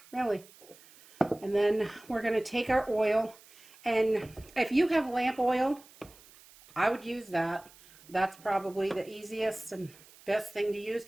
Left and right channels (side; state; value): right; noise; hiss, 24 dB below the sound